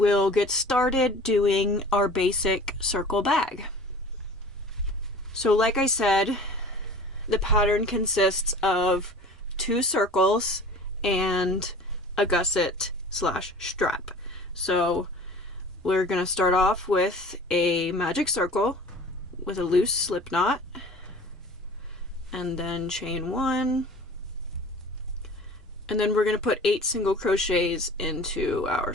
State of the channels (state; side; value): normal; both; correlation 0.43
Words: get started doing our basic circle bag. So like I said, the pattern consists of 2 circles and a gusset slash strap. So we're going to start off with a magic circle with a loose slip knot, and then chain 1, and then we're going to put 8 single crochets into our